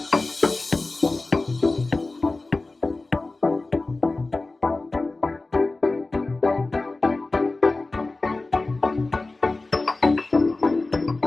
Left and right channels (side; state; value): right; quieter; 3.3 dB